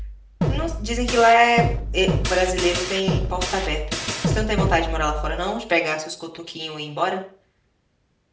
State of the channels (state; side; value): identical; both; correlation 1.00